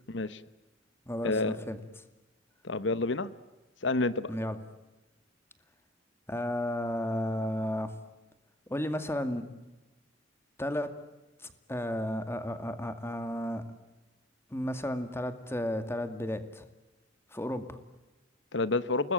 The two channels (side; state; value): both; normal; correlation 0.45